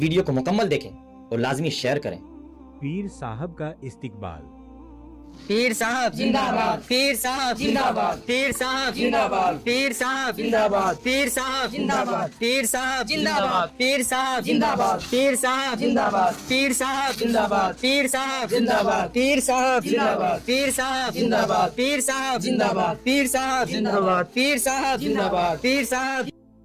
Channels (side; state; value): both; identical; correlation 1.00